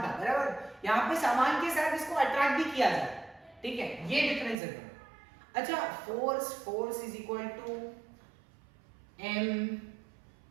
था, बराबर। यहाँ पे सामान के साथ इसको अट्रैक्ट भी किया जाए। ठीक है, ये डिफरेंस है। अच्छा, force is equal to m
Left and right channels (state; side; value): drops out; left; at 4.5 s